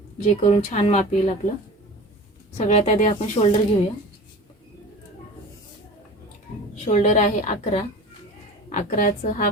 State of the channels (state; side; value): normal; both; correlation 0.37